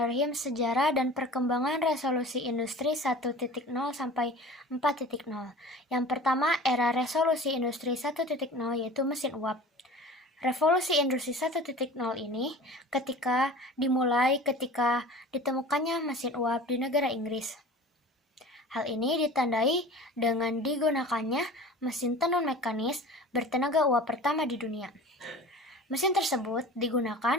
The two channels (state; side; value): normal; both; correlation 0.40